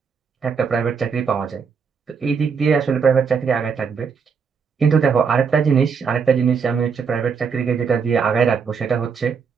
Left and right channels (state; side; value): quieter; left; 6.0 dB